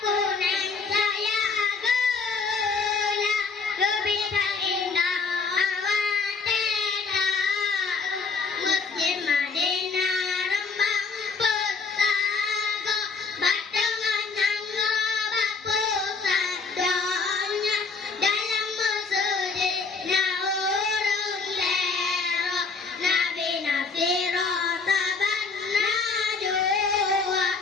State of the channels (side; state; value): right; quieter; 4.6 dB